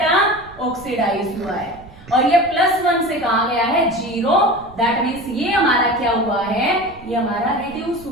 ऑक्सीडाइज हुआ है। और ये +1 से कहा गया है 0, दैट मीन्स ये हमारा क्या हुआ है, ये हमारा रिड्यूस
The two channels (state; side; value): noise; right; rumble, 21 dB below the sound